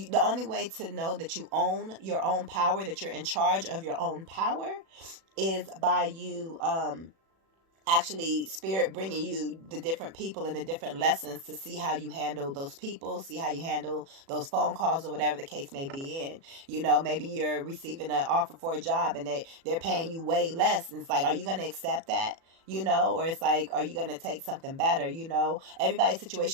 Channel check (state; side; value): late; left; 36 ms